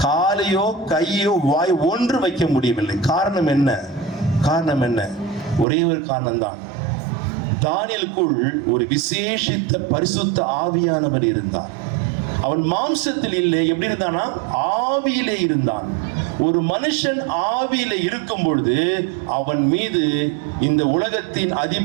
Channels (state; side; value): drops out; left; at 5.7 s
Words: காலையோ கையோ வாய் ஒன்று வைக்க முடியவில்லை. காரணம் என்ன? காரணம் என்ன? ஒரே ஒரு காரணம் தான், தானியேலுக்குள் ஒரு விசேஷித்த பரிசுத்த ஆவியானவர் இருந்தார். அவன் மாம்சத்தில் இல்லை, எப்படி இருந்தானா? ஆவியிலே இருந்தான். ஒரு மனுஷன் ஆவியிலே இருக்கும் பொழுது அவன் மீது இந்த உலகத்தின்